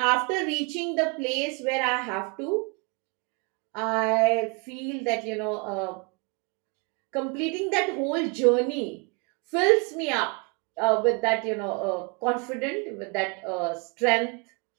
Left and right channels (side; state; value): left; quieter; 32.3 dB